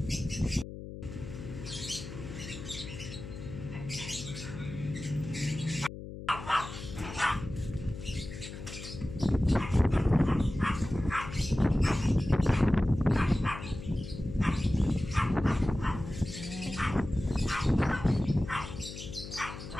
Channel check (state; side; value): noise; left; hum, 10 dB below the sound